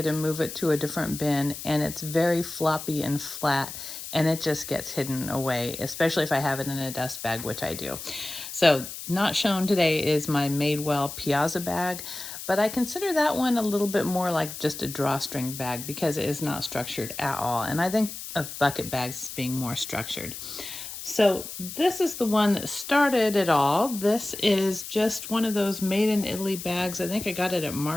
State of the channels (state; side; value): noise; left; hiss, 10 dB below the sound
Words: to move it to a different bin, and it's very floppy and flat, and it just gets hidden away, especially if I have it in a dust bag, which I do. So not shown today is my Madewell Piazza bag, but I consider that one a little bit more like just a drawstring bag because it is not structured at all. And I think of bucket bags as being more structured. So this is the one that started it all. This is just one of those made in Italy bags. I think I got it at